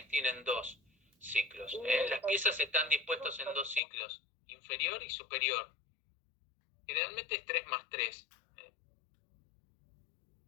tienen 2 ciclos. Las piezas están dispuestas en 2 ciclos, inferior y superior. Generalmente es 3 más 3.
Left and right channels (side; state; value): right; drops out; at 3.8 s